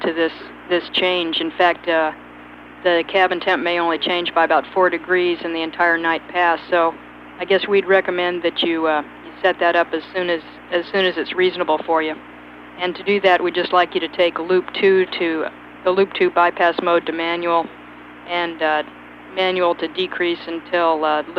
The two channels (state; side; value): identical; both; correlation 1.00